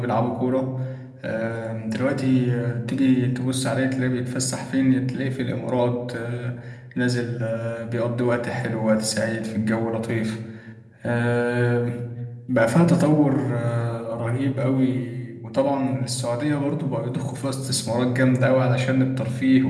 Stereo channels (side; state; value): both; identical; correlation 1.00